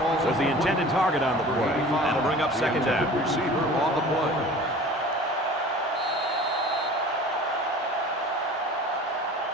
was the intended target on the play. That'll bring up 2nd down. Receiver on the play.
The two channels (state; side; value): normal; both; correlation 0.42